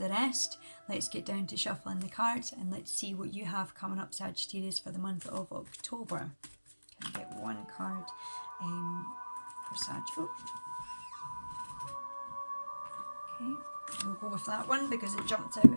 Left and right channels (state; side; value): inverted; both; correlation -1.00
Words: rest. Let's get down to shuffling the cards and let's see what you have coming up, Sagittarius, for the month of October. Can I get one card for Sag? Okay, we'll go with that one because it jumped out